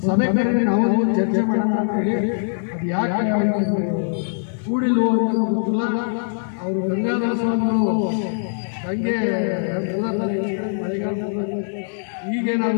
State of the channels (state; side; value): silent; right; 60 dB below the other